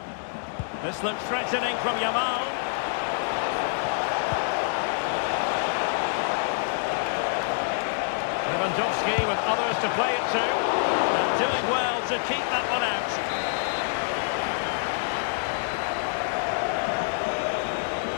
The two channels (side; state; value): right; silent; digital silence